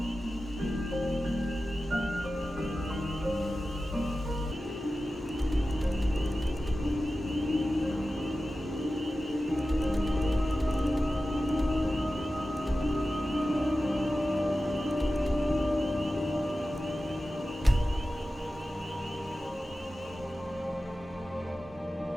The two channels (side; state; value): both; normal; correlation 0.94